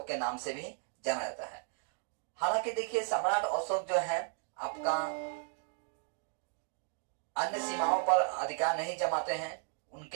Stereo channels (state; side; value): silent; left; 54 dB below the other